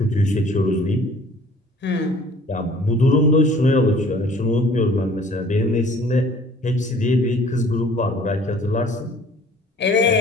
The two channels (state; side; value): normal; both; correlation 0.52